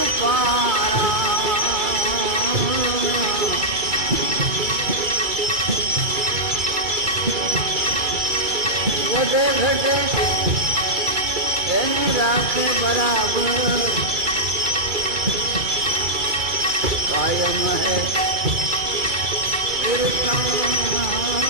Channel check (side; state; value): left; late; 2.4 ms